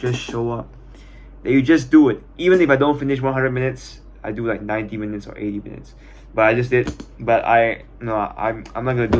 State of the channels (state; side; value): identical; both; correlation 1.00